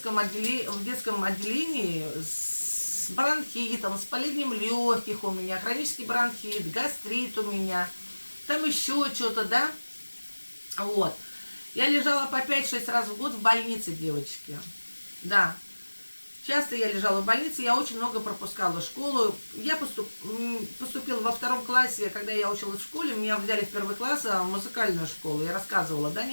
отделении с бронхитом, с воспалением легких у меня, хронический бронхит, гастрит у меня, там еще что-то, да. Вот. Я лежала по 5-6 раз в год в больнице, девочки. Да. Часто я лежала в больнице, я очень много пропускала школу. Я поступила во 2 классе, когда я училась в школе, меня взяли в 1 класс в музыкальную школу. Я рассказывала, да,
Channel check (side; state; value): both; inverted; correlation -1.00